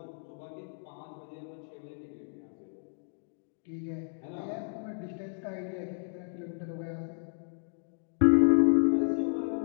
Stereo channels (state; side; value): silent; right; digital silence